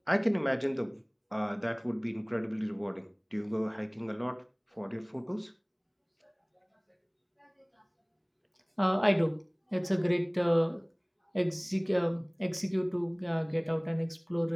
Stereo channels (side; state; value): both; identical; correlation 1.00